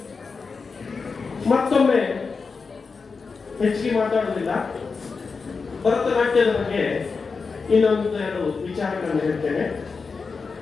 ಮತ್ತೊಮ್ಮೆ ಹೆಚ್ಚಿಗೆ ಮಾತಾಡುವುದಿಲ್ಲ, ಭರತನಾಟ್ಯದ ಬಗ್ಗೆ ಇನ್ನೊಂದು 2 ವಿಚಾರಗಳನ್ನು ಹೇಳ್ತೇನೆ.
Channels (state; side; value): quieter; right; 4.8 dB